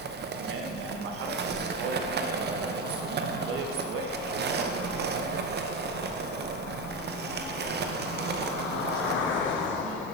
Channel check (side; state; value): both; normal; correlation 0.15